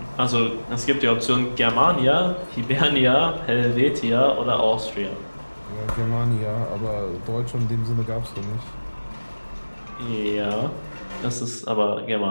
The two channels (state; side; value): inverted; both; correlation -1.00